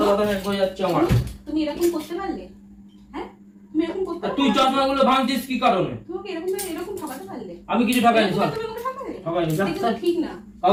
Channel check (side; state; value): both; identical; correlation 1.00